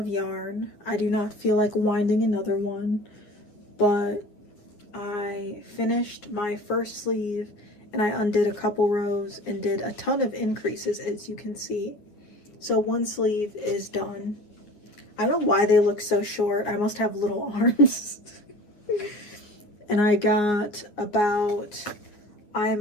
yarn. I do not feel like winding another one, but I finished my first sleeve and I undid a couple rows and did a ton of increases, as you can see. So one sleeve is done. I don't know why they look so short. I must have little arms. And I got about,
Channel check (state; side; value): late; right; 9.6 ms